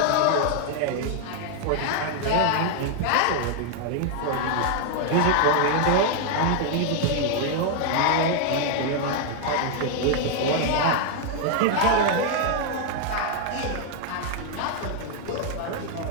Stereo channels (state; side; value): different; both; correlation 0.00